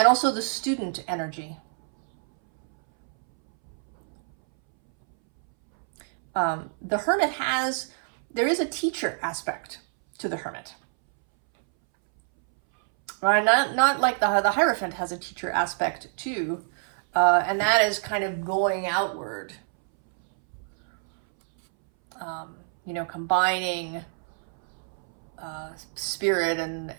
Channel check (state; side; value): silent; left; 61 dB below the other